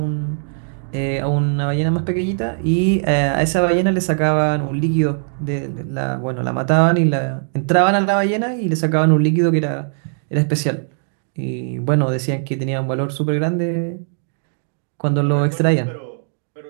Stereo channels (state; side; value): silent; left; digital silence